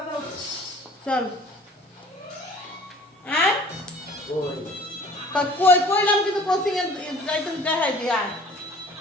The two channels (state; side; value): normal; both; correlation 0.49